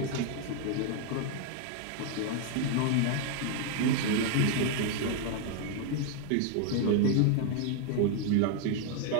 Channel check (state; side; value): different; both; correlation 0.00